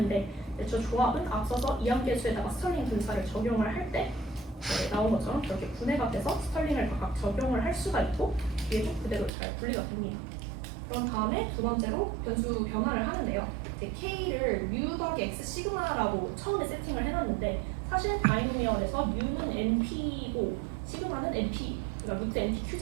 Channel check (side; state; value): left; drops out; at 9.3 s